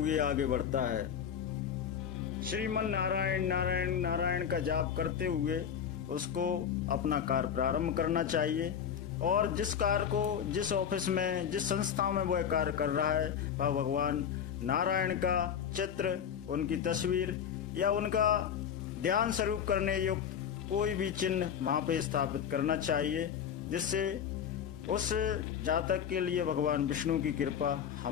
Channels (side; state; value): right; quieter; 8.3 dB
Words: आगे बढ़ता है। श्रीमन नारायण नारायण नारायण का जाप करते हुए उसको अपना कार्य प्रारंभ करना चाहिए और जिस कार्य को, जिस ऑफिस में, जिस संस्था में वह कार्य कर रहा है, वह भगवान नारायण का चित्र, उनकी तस्वीर या उनका ध्यान स्वरूप करने युक्त कोई भी चिन्ह वहाँ पे स्थापित करना चाहिए, जिससे उस जातक के लिए भगवान विष्णु की कृपा